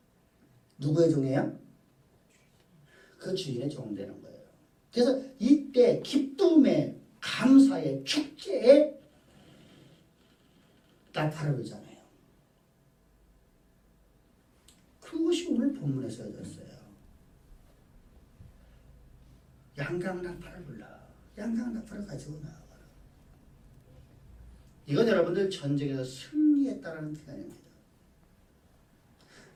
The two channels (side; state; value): both; identical; correlation 1.00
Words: 누구의 종이에요? 그 주인의 종 되는 거예요. 그래서 이때 기쁨의 감사의 축제에 나팔을 불잖아요. 그것이 오늘 본문에 써졌어요. 양강 나팔을 불러. 양강 나팔을 가지고 나와라. 이건 여러분들 전쟁에서 승리했다라는 표현입니다.